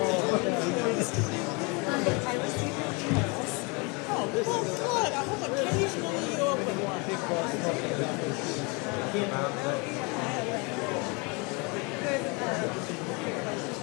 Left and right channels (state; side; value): quieter; right; 30.1 dB